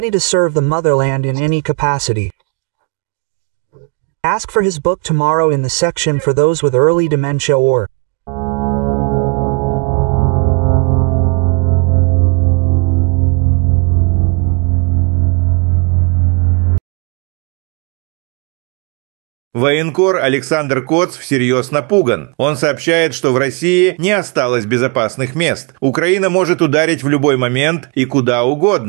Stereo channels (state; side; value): quieter; left; 30.6 dB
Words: to serve the motherland in any capacity. Ask for his book tomorrow in the section for those with early dementia or Военкор Александр Коц всерьез напуган. Он сообщает, что в России не осталось безопасных мест. Украина может ударить в любой момент и куда